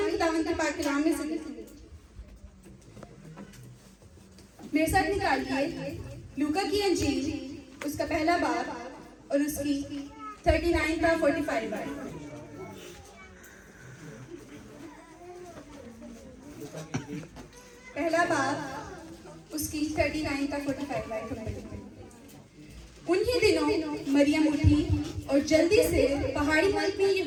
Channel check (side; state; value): both; identical; correlation 1.00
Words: खुदावंद के पाक कलाम में से मेरे साथ निकालिए लूका की अंजील उसका पहला बाब और उसकी 39 का 45 बार। पहला बाब उसकी 39 का 45 बार। उन्हीं दिनों मरियम उठी और जल्दी से पहाड़ी मुल्क में